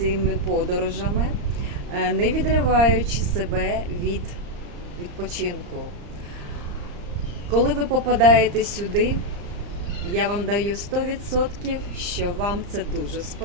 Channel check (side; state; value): left; late; 34 ms